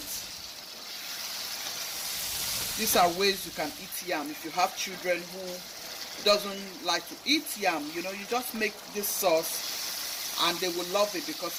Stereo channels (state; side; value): identical; both; correlation 1.00